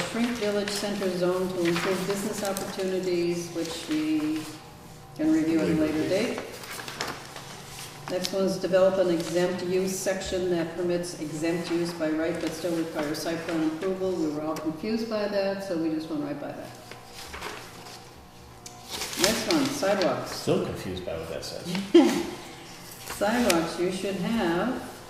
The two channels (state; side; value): identical; both; correlation 1.00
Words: shrink village center zone to improve business opportunities, which we can review at a later date. Next one is develop an exempt use section that permits exempt use by right but still requires site plan approval. We were all confused by that, so we just went right by that. Next one, sidewalks. Still confused by what that says. Sidewalks, you should have,